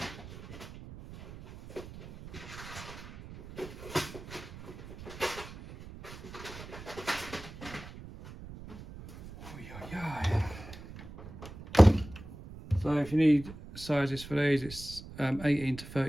So if you need sizes for these, it's 18 to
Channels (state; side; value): noise; right; rumble, 14 dB below the sound